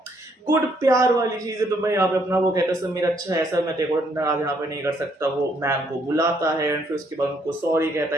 गुड प्यार वाली चीज है। तो भाई यहाँ पे अपना वो कहता है सर मेरा अच्छा ऐसा मैं तेरे को नाराज यहाँ पे नहीं कर सकता। वो मैम को बुलाता है एंड फिर उसके बाद उनको सॉरी कहता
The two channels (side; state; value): both; normal; correlation 0.69